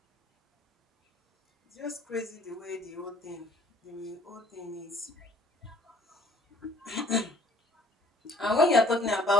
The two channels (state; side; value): normal; both; correlation 0.57